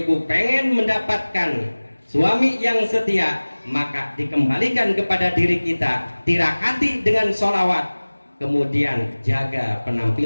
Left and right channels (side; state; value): both; inverted; correlation -1.00